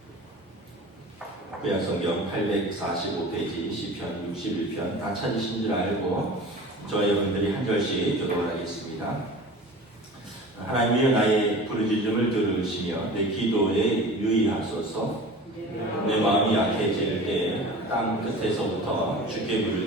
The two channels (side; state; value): both; normal; correlation 0.38